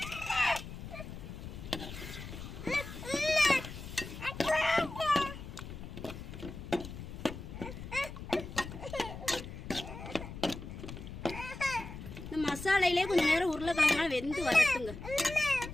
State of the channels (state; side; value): noise; left; rumble, 10 dB below the sound